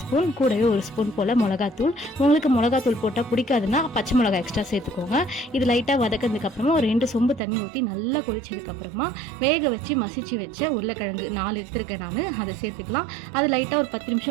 ஸ்பூன், கூடவே ஒரு ஸ்பூன் போல் மிளகாத்தூள். உங்களுக்கு மிளகாத்தூள் போட்டால் பிடிக்காதுன்னா பச்சை மிளகா எக்ஸ்ட்ரா சேர்த்துக்கோங்க. இது லைட்டாக வதக்கிறதுக்கு அப்புறமா ஒரு 2 சொம்பு தண்ணி ஊற்றி நல்லா கொதிச்சதுக்கு அப்புறமா வேக வச்சு மசிச்சு வச்ச உருளைக்கிழங்கு 4 எடுத்துருக்கேன் நான், அதை சேர்த்துக்கலாம். அது லைட்டாக ஒரு 10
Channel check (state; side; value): drops out; left; at 7.4 s